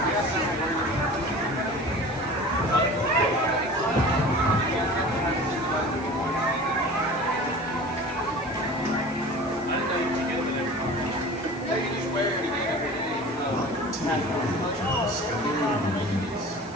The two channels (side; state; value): left; noise; hiss, 23 dB below the sound